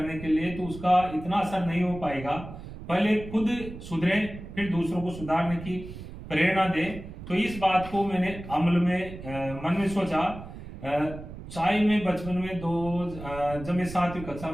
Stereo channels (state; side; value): noise; right; rumble, 12 dB below the sound